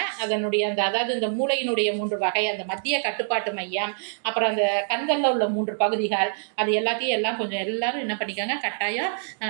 அதனுடைய அதாவது இந்த மூளையினுடைய 3 வகை, அந்த மத்திய கட்டுப்பாட்டு மையம், அப்புறம் அந்த கண்களில் உள்ள 3 பகுதிகள், அது எல்லாத்தையும் கொஞ்சம் எல்லாரும் என்ன பண்ணிக்கோங்க, கட்டாயம்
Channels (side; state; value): left; silent; digital silence